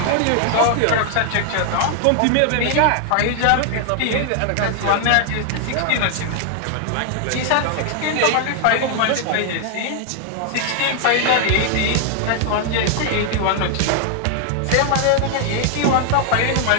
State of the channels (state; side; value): different; both; correlation 0.00